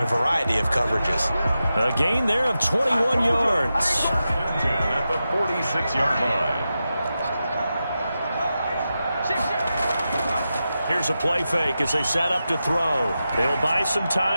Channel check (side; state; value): both; inverted; correlation -0.91